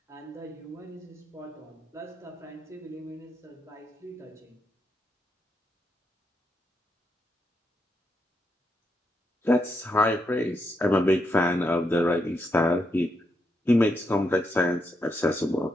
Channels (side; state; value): both; normal; correlation 0.80